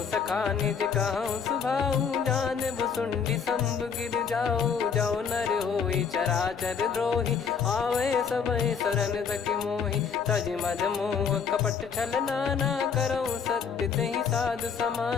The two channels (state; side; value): quieter; right; 6.4 dB